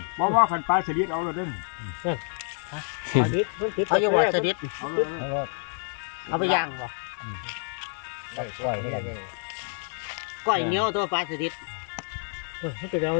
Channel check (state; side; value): silent; right; 60 dB below the other